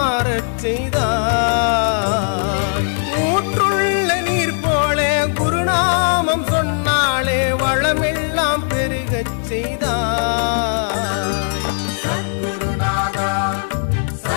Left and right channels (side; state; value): right; silent; digital silence